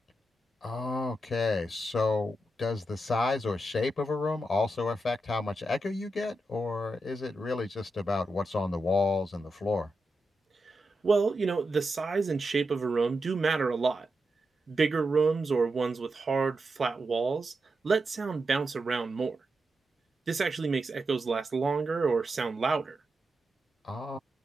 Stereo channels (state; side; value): normal; both; correlation 0.87